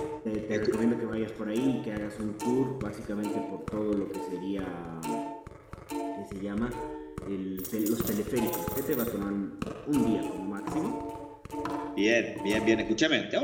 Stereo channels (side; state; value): both; identical; correlation 1.00